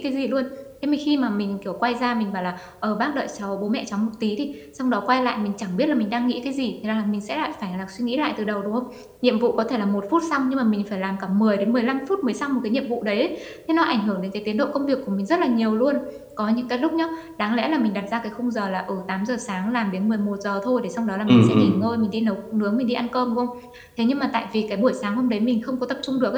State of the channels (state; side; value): identical; both; correlation 1.00